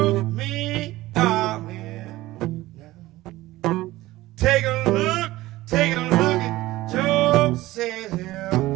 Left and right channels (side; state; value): left; quieter; 17.5 dB